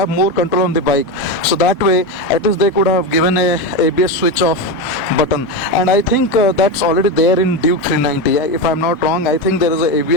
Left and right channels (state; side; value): normal; both; correlation 0.16